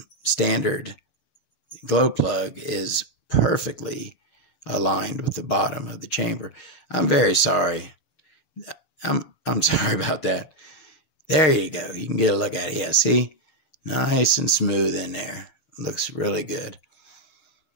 standard glow plug is perfectly aligned with the bottom of the chamber. I'm very sorry. I'm sorry about that. There you go. You can get a look at it. Yeah, see? Nice and smooth in there. Looks really good.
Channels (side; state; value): right; late; 6.9 ms